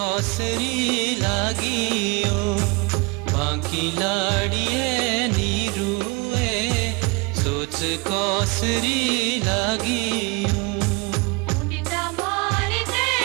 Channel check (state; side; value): quieter; left; 27.1 dB